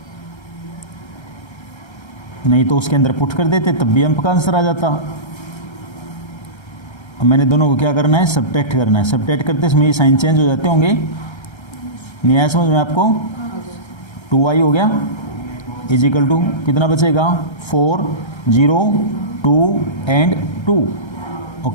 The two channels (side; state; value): right; late; 1.3 ms